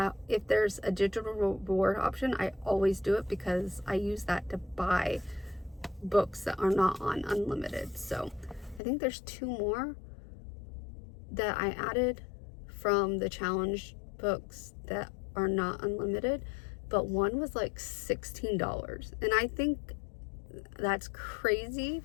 if there's a digital reward option, I always do it, because I use that to buy books that are not on unlimited. So I think there's 2 more that I added from the challenge books that are not unlimited, but one was like $16. And I think that's crazy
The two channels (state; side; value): drops out; right; at 8.8 s